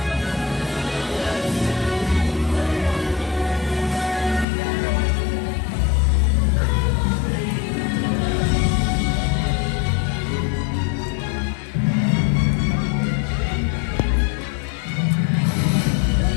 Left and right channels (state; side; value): drops out; right; at 4.5 s